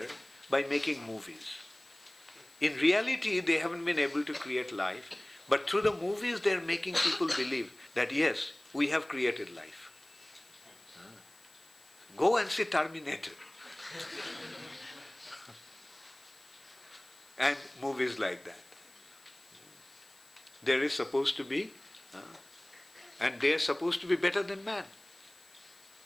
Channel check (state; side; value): noise; left; hiss, 27 dB below the sound